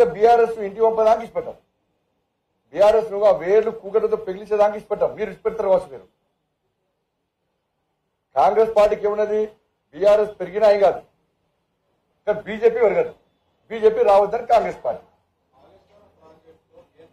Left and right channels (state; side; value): identical; both; correlation 1.00